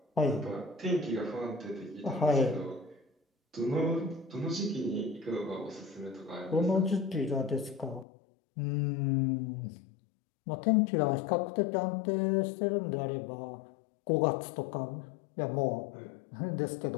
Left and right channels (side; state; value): right; drops out; at 8.1 s